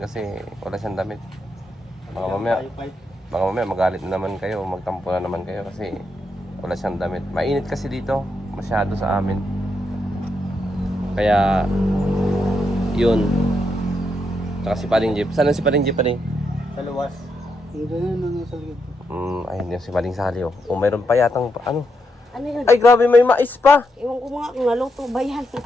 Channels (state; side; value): normal; both; correlation 0.81